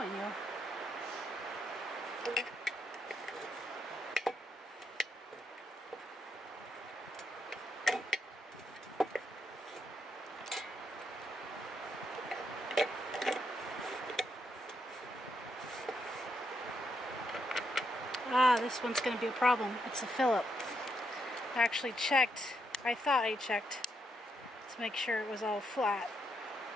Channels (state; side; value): normal; both; correlation 0.79